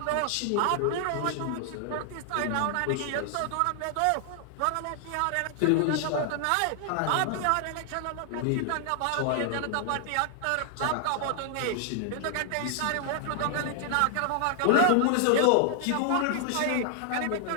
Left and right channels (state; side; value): different; both; correlation 0.00